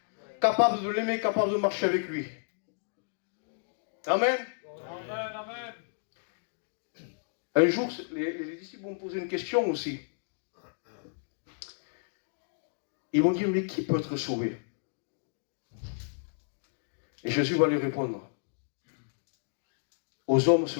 capable de l'aimer, capable de marcher avec lui. Amen. Amen, amen. Un jour, les disciples vont poser une question aussi. Ils vont dire, mais qui peut être sauvé? Et Jésus va lui répondre, aux hommes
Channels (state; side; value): silent; right; digital silence